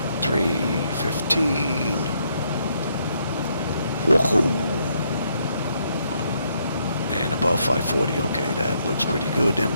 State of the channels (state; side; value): inverted; both; correlation -0.74